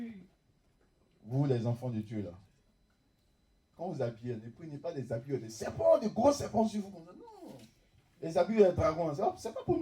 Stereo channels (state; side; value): identical; both; correlation 1.00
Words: Vous, les enfants de Dieu, là. Quand vous habillez, ne prenez pas des habits de serpents, de gros serpents sur vous. Non. Les habits de dragon, c'est pas pour